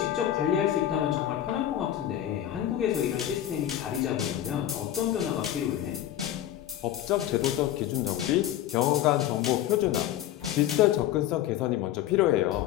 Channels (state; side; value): quieter; right; 12.1 dB